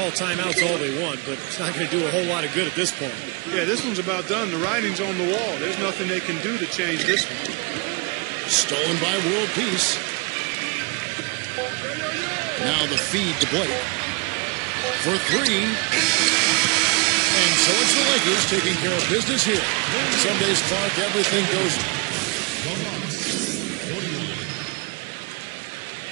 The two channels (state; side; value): quieter; left; 30.6 dB